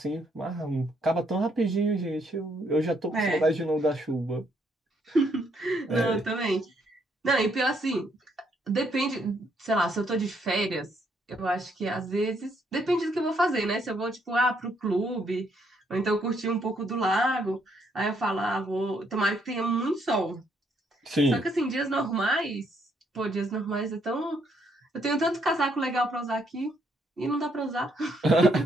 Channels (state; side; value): normal; both; correlation 0.72